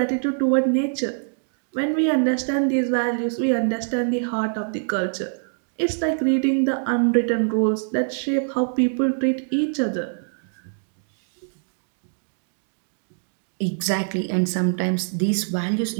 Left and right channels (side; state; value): left; silent; digital silence